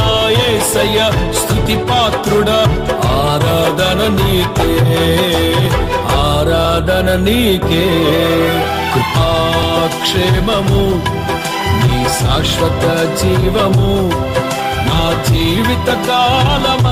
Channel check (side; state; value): both; identical; correlation 1.00